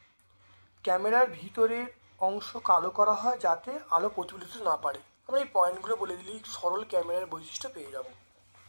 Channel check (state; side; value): inverted; both; correlation -1.00